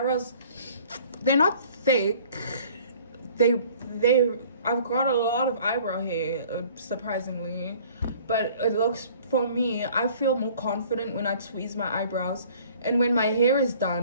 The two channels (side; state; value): both; inverted; correlation -0.53